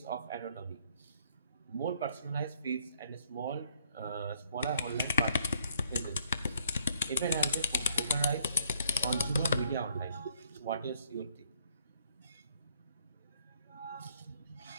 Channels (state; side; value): inverted; both; correlation -0.65